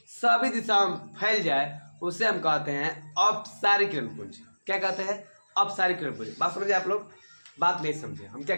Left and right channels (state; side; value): inverted; both; correlation -1.00